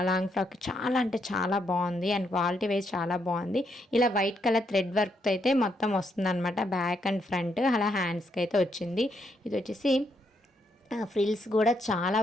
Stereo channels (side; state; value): both; normal; correlation 0.77